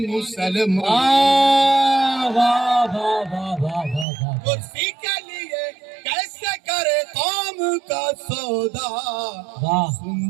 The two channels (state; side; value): drops out; left; at 4.0 s